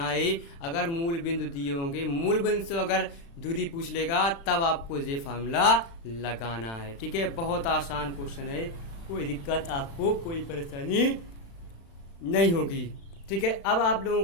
है। अगर मूल बिंदु दिए होंगे, मूल बिंदु से अगर दूरी पूछ लेगा तब आपको ये फार्मूला लगाना है। ठीक है, बहुत आसान क्वेश्चन है, कोई दिक्कत आपको, कोई परेशानी नहीं होगी। ठीक है, अब आप लोगों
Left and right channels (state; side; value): late; right; 36 ms